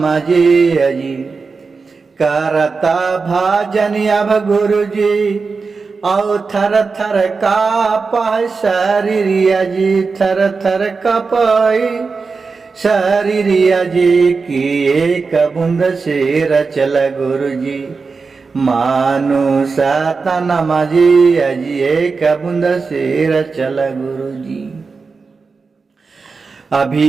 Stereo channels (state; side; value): quieter; left; 4.6 dB